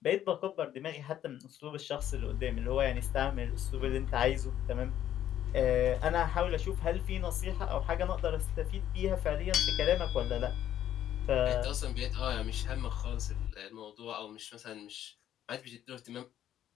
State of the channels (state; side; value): quieter; right; 11.3 dB